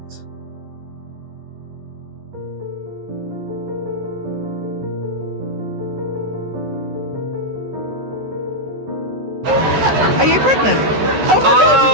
Are you pregnant?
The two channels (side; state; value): left; late; 13 ms